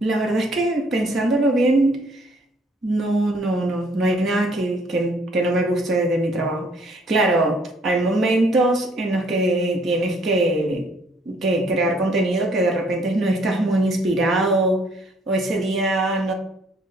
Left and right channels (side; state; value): both; normal; correlation 0.63